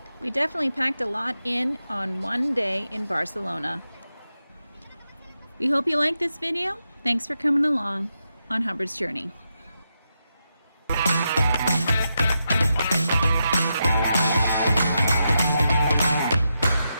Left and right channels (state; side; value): inverted; both; correlation -0.86